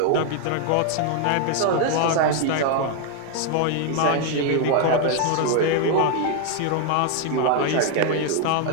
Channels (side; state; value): both; different; correlation 0.00